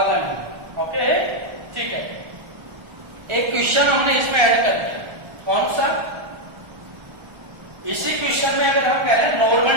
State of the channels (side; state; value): left; late; 1.3 ms